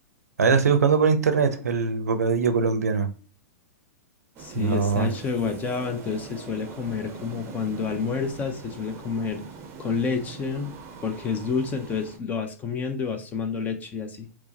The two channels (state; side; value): normal; both; correlation -0.19